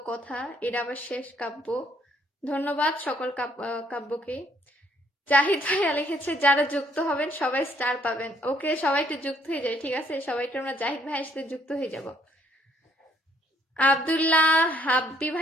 কথা, এটা আবার শেষ কাব্য। ধন্যবাদ সকল কাব্যকে। জাহিদ ভাইয়া লিখেছে যারা যুক্ত হবেন সবাই স্টার পাবেন, ওকে। সবাই একটু যুক্ত হয়ে যায়, ঠিক আছে? সবাইকে আমরা জাহিদ ভাইয়ের সাথে যুক্ত হয়ে যাব। আব্দুল্লাহ হাব্বি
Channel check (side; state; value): both; normal; correlation 0.66